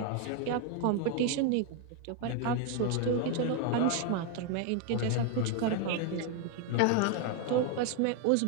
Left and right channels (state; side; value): different; both; correlation 0.01